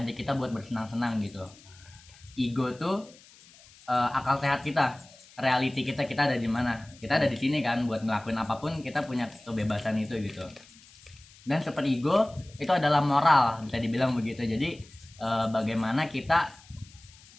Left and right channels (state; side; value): noise; left; hiss, 24 dB below the sound